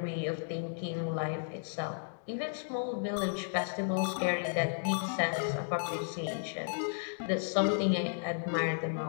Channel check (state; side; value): silent; right; digital silence